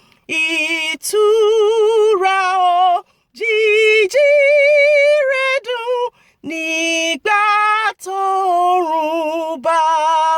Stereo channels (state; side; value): identical; both; correlation 1.00